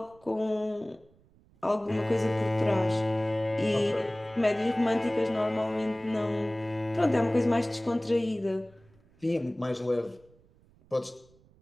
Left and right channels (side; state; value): right; noise; rumble, 30 dB below the sound